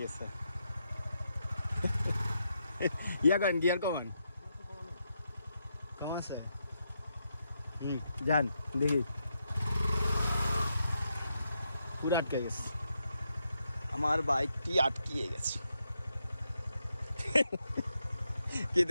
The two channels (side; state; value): both; inverted; correlation -0.82